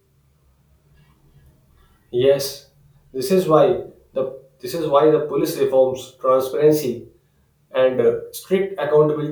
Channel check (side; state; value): both; identical; correlation 1.00